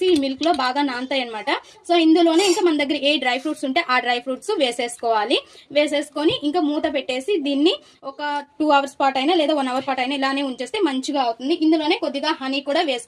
ఈ మిల్క్ లో బాగా నానతాయి అనమాట. సో ఇందులోనే ఇంకా మన దగ్గర ఏ డ్రై ఫ్రూట్స్ ఉంటే ఆ డ్రై ఫ్రూట్స్ వేసేసుకోవాలి. వేసేసుకొని ఇంకా మూత పెట్టేసి దీన్ని ఒక 2 అవర్స్ పాటు అయినా లేదా 1 అవర్ పాటు అయినా ఇలానే ఉంచేస్తే మంచిగా అవుతుంది. ఇందులోనే కొద్దిగా హనీ కూడా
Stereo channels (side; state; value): both; identical; correlation 1.00